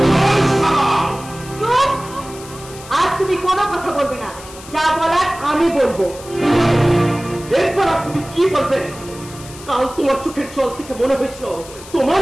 আজ তুমি কোনো কথা বলবে না, যা বলার আমি বলবো। এরপর আর তুমি কি বলবে? কাল তোমার চোখের জল থেকে মনে হয়েছিল তোমার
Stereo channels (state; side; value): noise; left; hiss, 17 dB below the sound